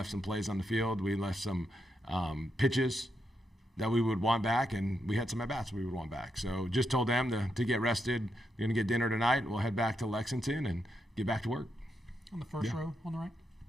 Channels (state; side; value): normal; both; correlation 0.82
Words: some plays on the field. We left some pitches that we would want back, and we had some at-bats we would want back. So just told them to get rested. We're going to get dinner tonight. We'll head back to Lexington and get back to work. On the first row on the right.